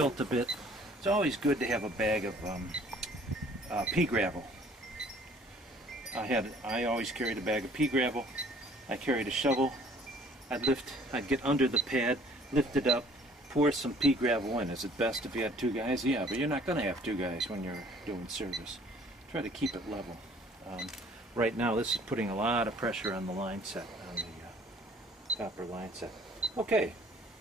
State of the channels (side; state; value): both; normal; correlation 0.55